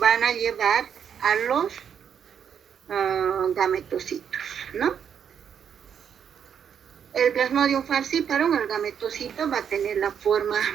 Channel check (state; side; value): quieter; left; 8.0 dB